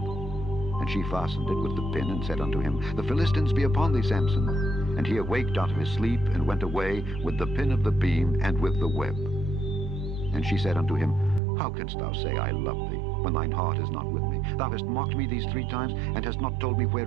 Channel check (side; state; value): left; drops out; at 11.4 s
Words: she fastened it with the pin, and said unto him, The Philistines be upon thee, Samson. And he awaked out of his sleep, and went away with the pin of the beam, and with the web. And she said unto him, How canst thou say, I love thee, when thine heart is not with me? Thou hast mocked me these 3 times, and hast not told me